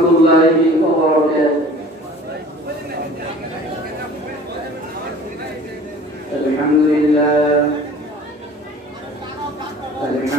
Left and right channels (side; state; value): both; normal; correlation 0.46